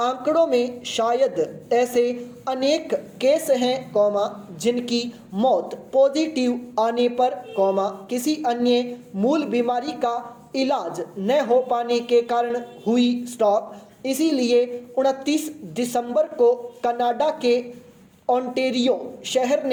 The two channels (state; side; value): identical; both; correlation 1.00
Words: में शायद ऐसे अनेक केस हैं, जिनकी मौत पॉजिटिव आने पर, किसी अन्य मूल बीमारी का इलाज न हो पाने के कारण हुई। स्टॉप। इसीलिए 29 दिसंबर को कनाडा के ओंटारियो शहर